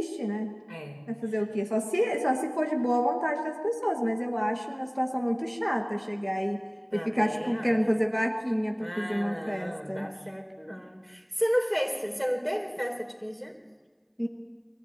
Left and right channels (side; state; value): both; identical; correlation 1.00